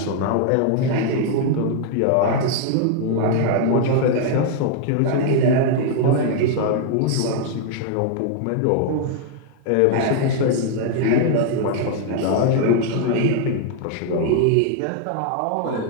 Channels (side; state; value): both; different; correlation 0.00